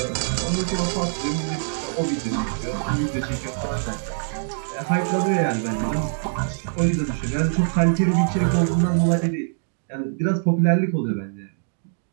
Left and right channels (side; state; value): left; silent; digital silence